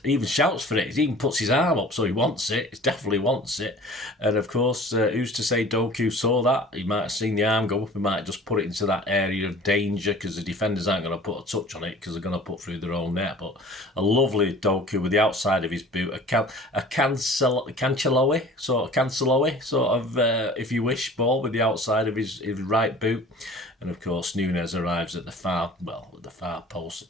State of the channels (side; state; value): both; normal; correlation 0.45